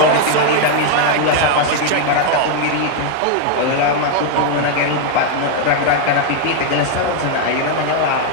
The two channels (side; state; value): both; different; correlation 0.00